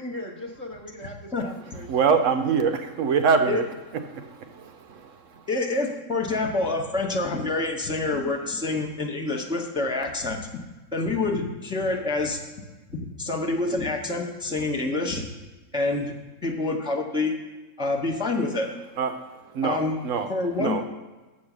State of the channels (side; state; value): left; late; 3.7 ms